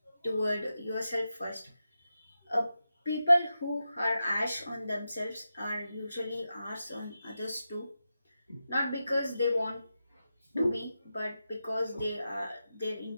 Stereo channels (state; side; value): inverted; both; correlation -0.90